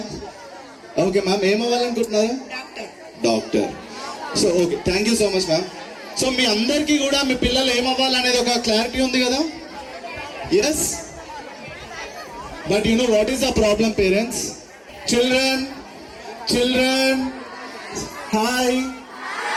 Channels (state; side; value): identical; both; correlation 1.00